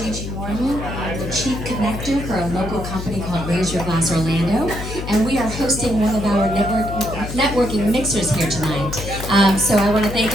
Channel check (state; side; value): noise; left; hum, 7 dB below the sound